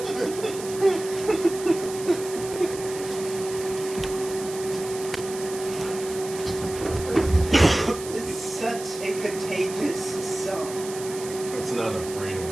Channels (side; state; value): right; noise; hiss, 12 dB below the sound